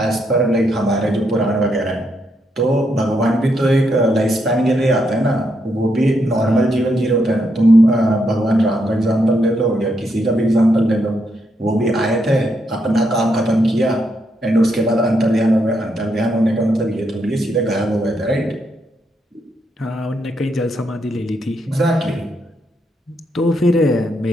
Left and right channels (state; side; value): normal; both; correlation 0.79